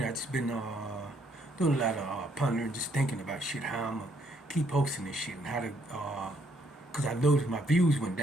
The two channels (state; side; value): normal; both; correlation 0.70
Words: I've just been doing a lot of pondering, just thinking about shit, how I'm gonna keep posting this shit and how to, cause I noticed my views went